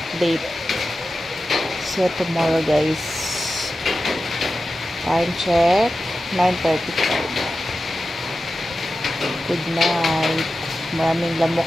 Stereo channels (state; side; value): normal; both; correlation 0.93